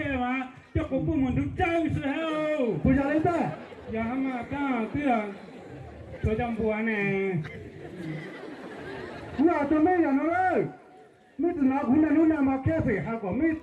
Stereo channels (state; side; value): identical; both; correlation 1.00